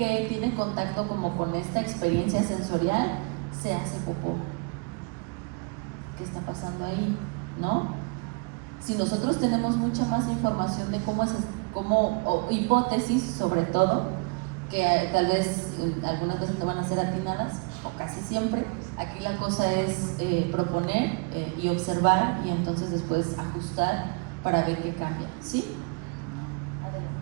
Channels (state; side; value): quieter; left; 31.0 dB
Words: tiene contacto como con esta experiencia sensorial, se hace popó. ¿Qué está pasando ahí? ¿No? Si nosotros tenemos mucha más información de o hipótesis sobre todo, que tal vez algunas veces no van a ser atinadas, casi siempre. Aquí la cosa es proponer y observar y entonces después ajustar para ver qué cambia, ¿sí?